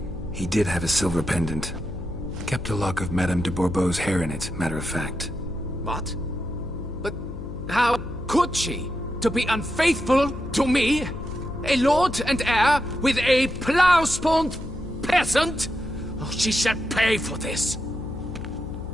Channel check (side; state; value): left; noise; hum, 10 dB below the sound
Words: he did have a silver pendant. Kept a lock of Madame de Bourbeau's hair in it, matter of fact. What? But how could she? To be unfaithful to me? A lord and heir with a plow-spawned peasant? Oh, she shall pay for this.